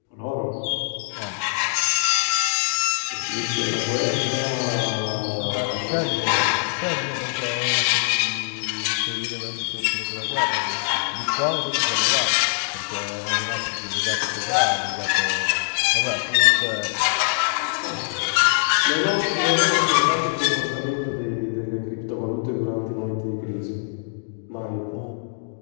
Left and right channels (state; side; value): silent; right; digital silence